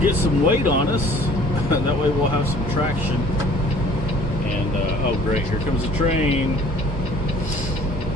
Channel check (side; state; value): both; normal; correlation 0.52